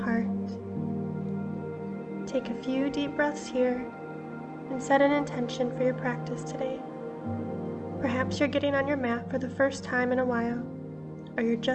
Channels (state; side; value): identical; both; correlation 1.00